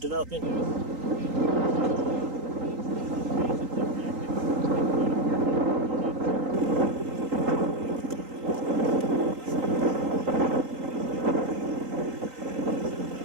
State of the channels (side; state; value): left; late; 3.8 ms